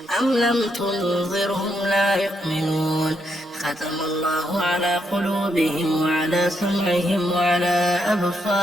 أم لم تنذرهم لا يؤمنون ختم الله على قلوبهم وعلى سمعهم وعلى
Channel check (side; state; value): both; normal; correlation 0.78